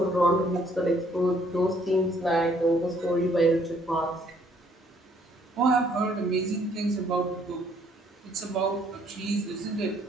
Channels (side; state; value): both; normal; correlation 0.64